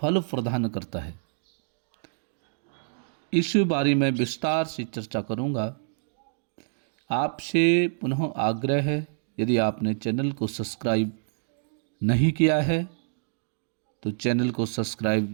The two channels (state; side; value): silent; left; digital silence